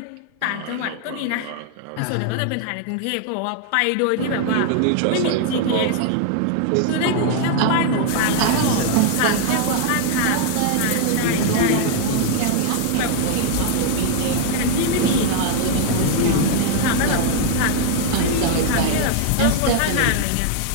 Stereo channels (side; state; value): both; different; correlation 0.00